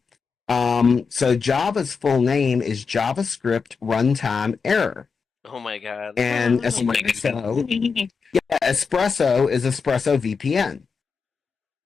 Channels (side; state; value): right; quieter; 5.3 dB